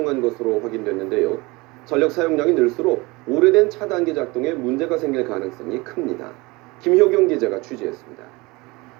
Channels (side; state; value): left; quieter; 23.9 dB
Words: 것으로 확인됐는데요. 전력 사용량이 늘수록 오래된 차단기 작동에 문제가 생길 가능성이 큽니다. 김효경 기자가 취재했습니다.